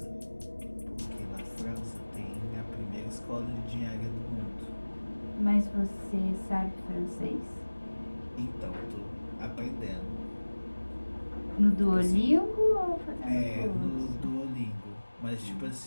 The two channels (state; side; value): inverted; both; correlation -1.00